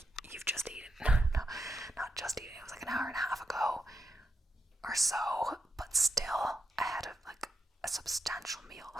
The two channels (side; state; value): both; normal; correlation 0.85